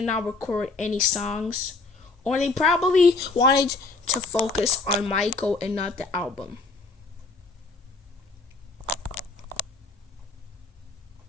not record any songs, or they probably wanted to focus on Michael and not the album.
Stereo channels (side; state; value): right; quieter; 3.7 dB